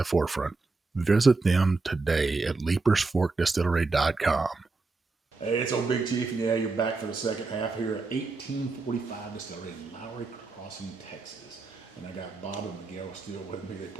forefront. Visit them today at leapersforkdistillery.com. Hey, it's old Big Chief, and yeah, you're back for the second half here at 1845 Distillery in Lowey Crossing, Texas. And I got Bob and Miguel still with me. They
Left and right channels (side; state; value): left; quieter; 3.7 dB